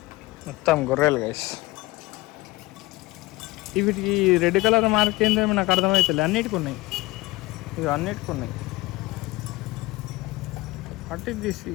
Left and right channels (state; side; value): quieter; right; 20.7 dB